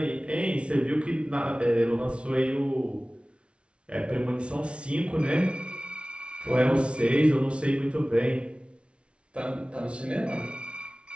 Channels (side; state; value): left; late; 0.059 ms